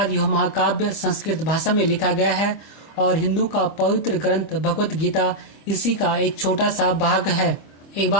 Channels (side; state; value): right; late; 25 ms